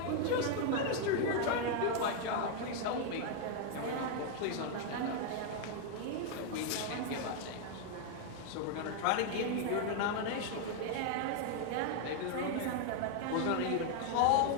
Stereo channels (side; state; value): both; different; correlation 0.00